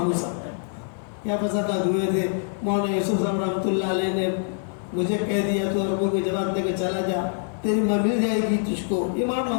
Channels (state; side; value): silent; right; digital silence